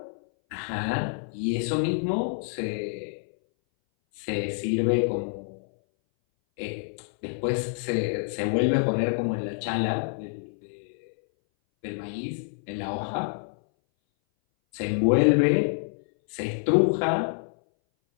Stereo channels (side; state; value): right; silent; 59 dB below the other